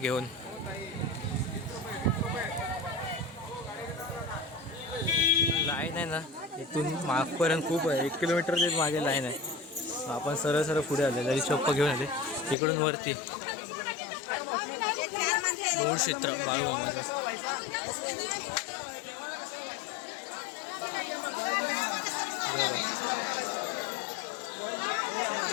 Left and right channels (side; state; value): right; drops out; at 12.6 s